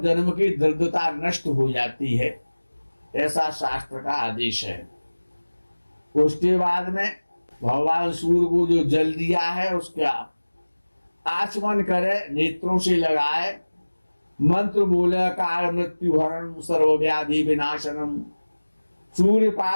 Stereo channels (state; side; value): inverted; both; correlation -1.00